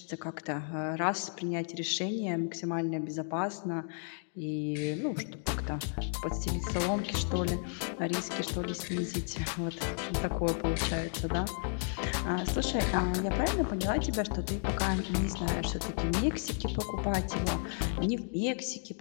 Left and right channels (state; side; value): silent; right; 56 dB below the other